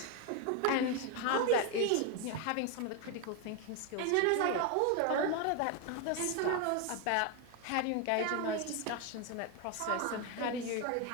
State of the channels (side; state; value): both; different; correlation 0.01